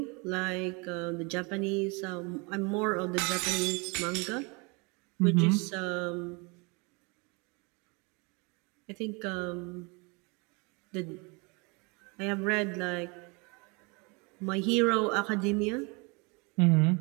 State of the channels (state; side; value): quieter; left; 29.8 dB